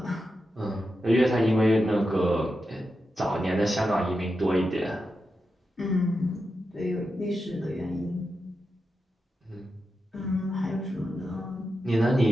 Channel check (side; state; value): both; normal; correlation 0.89